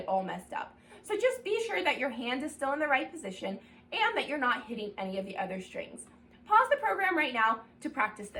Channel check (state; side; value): identical; both; correlation 1.00